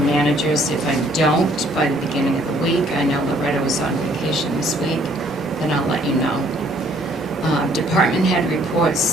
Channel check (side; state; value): right; noise; rumble, 28 dB below the sound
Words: managers. If I don't by the beginning of the week, I know Loretta was on vacation this week, then I'll let you know. Department head